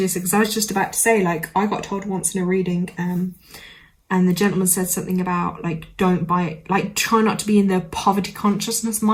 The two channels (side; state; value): both; identical; correlation 1.00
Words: because I was just about to say, like, I got told once in a reading, and the gentleman said something about, like, don't buy, like, try not to be in the poverty consciousness